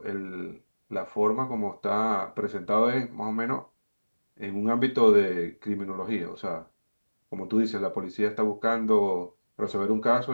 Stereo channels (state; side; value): inverted; both; correlation -1.00